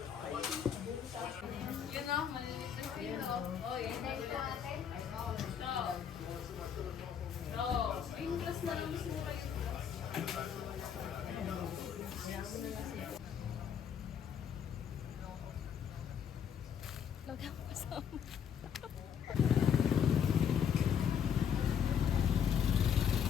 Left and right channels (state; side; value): quieter; right; 8.0 dB